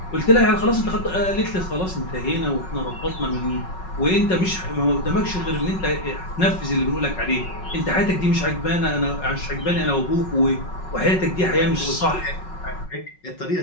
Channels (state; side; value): late; right; 5.4 ms